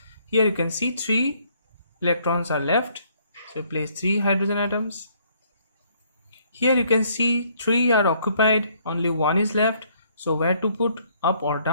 Here you can see 3 electrons are left, so place 3 hydrogen atoms. Here you can see 3 are occupied, only 1 is left, so where to put, up or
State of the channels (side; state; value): both; inverted; correlation -0.65